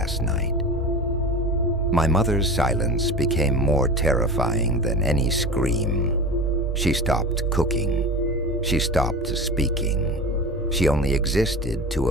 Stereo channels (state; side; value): normal; both; correlation 0.31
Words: night. My mother's silence became more terrifying than any scream. She stopped cooking. She stopped speaking. She only existed to